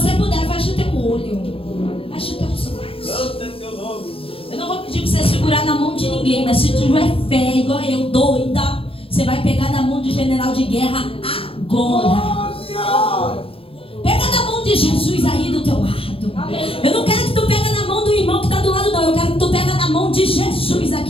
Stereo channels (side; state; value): right; late; 0.27 ms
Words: puder, fecha o teu olho. Fecha o teu olho. Santo é teu nome. Eu não vou pedir pra você segurar na mão de ninguém, mas se tiver fé, igual eu, doida, você vai pegar na mão de general de guerra agora. Pega na mão de Jesus aí do teu lado. Eu não quero que tu pega na mão do irmão que está do lado, não. Eu quero que tu pega na mão de Jesus